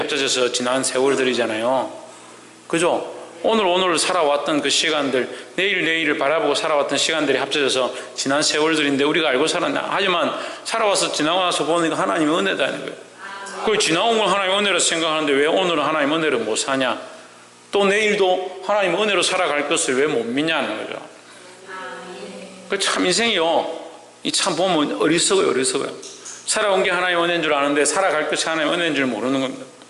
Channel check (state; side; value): identical; both; correlation 1.00